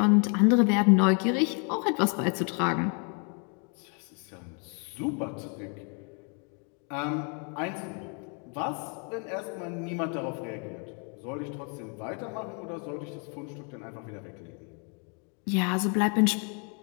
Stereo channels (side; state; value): right; quieter; 38.3 dB